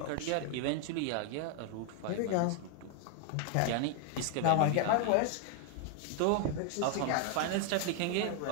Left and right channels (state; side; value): different; both; correlation 0.00